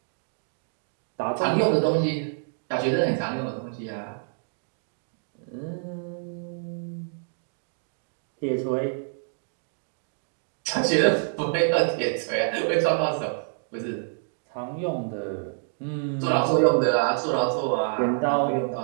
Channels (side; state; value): left; silent; digital silence